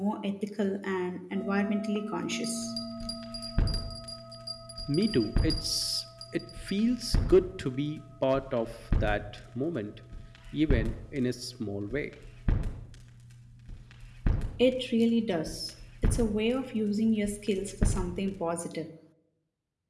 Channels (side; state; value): both; identical; correlation 1.00